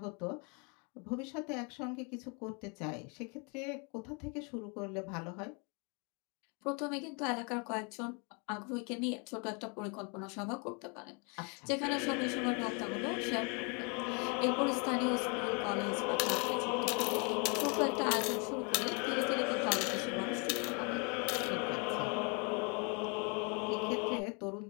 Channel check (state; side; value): quieter; right; 34.0 dB